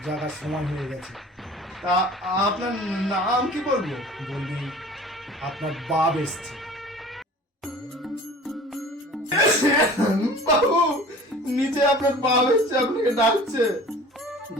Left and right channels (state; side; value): normal; both; correlation 0.44